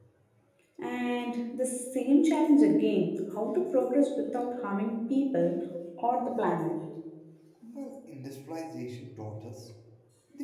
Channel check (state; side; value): identical; both; correlation 1.00